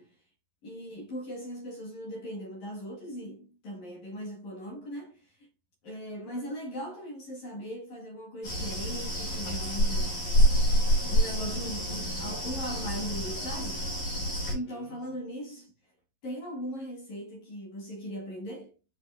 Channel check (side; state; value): right; late; 11 ms